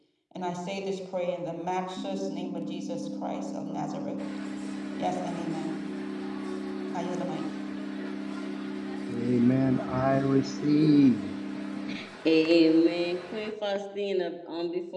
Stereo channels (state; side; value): identical; both; correlation 1.00